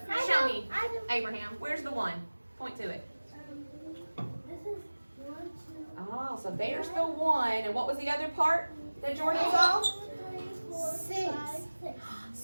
I Show know, me, I know. Abraham. Where's the 1? Point to it. This is 1, 2. Oh, so there's the 1. And what was the other part that Jordan saw? 6.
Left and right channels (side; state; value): both; inverted; correlation -1.00